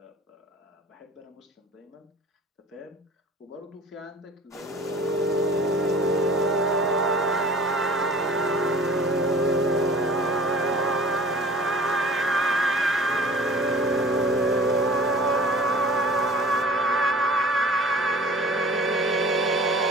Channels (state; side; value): normal; both; correlation 0.45